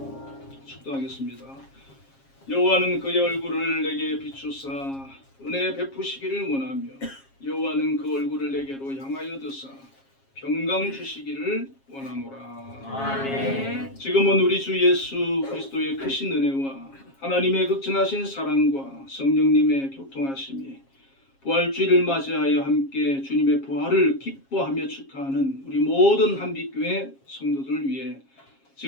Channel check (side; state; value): right; late; 7.4 ms